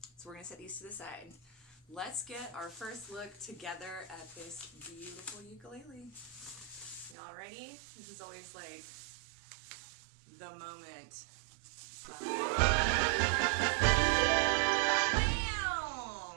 So we're going to set these to the side. Let's get our first look together at this beautiful ukulele. Y'all ready? This is always like the moment.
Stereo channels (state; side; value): drops out; left; at 7.2 s